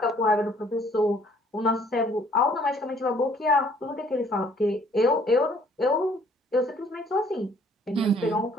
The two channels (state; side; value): normal; both; correlation 0.60